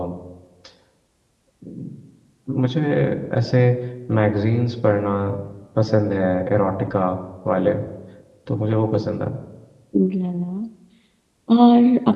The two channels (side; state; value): both; identical; correlation 1.00